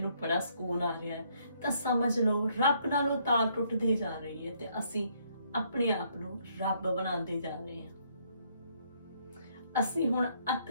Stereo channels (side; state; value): both; inverted; correlation -0.69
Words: ਬੜਾ ਸਕੂਨ ਆ ਰਿਹਾ ਹੈ, ਤਾਂ ਸਮਝ ਲਓ ਰੱਬ ਨਾਲੋਂ ਤਾਰ ਟੁੱਟਦੀ ਜਾ ਰਹੀ ਹੈ ਤੇ ਅਸੀਂ ਆਪਣੇ ਆਪ ਨੂੰ ਰੱਬ ਬਣਾਉਂਦੇ ਜਾ ਰਹੇ ਹਾਂ। ਅਸੀਂ ਹੁਣ ਅੱਤ